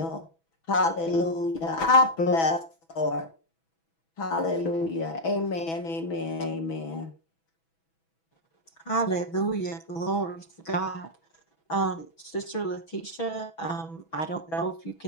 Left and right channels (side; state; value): right; late; 6.1 ms